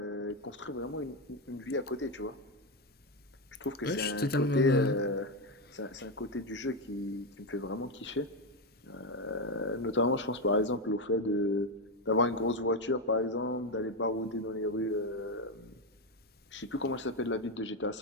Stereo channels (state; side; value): normal; both; correlation 0.09